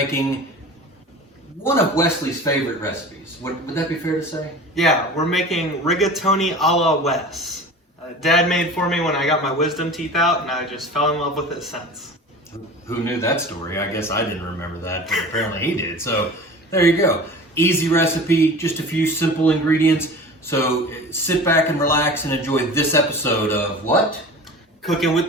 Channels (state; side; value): normal; both; correlation 0.37